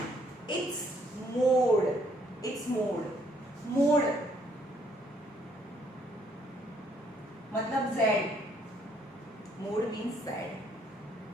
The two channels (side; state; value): both; normal; correlation 0.67